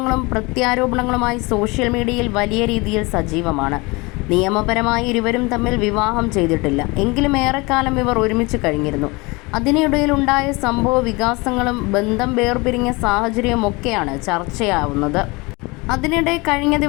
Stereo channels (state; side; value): quieter; right; 25.3 dB